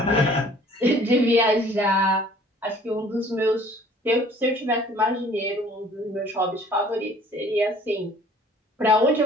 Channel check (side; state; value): both; normal; correlation 0.53